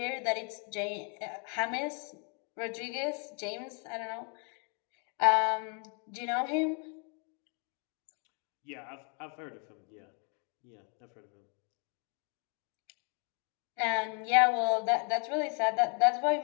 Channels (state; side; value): quieter; right; 38.3 dB